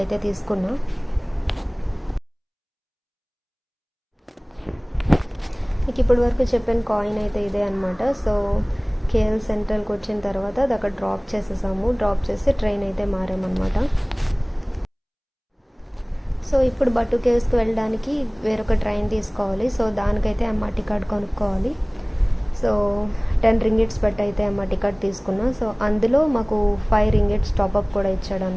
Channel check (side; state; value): both; identical; correlation 1.00